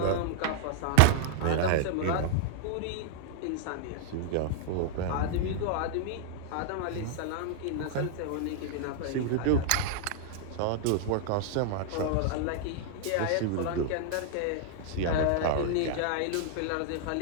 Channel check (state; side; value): different; both; correlation 0.00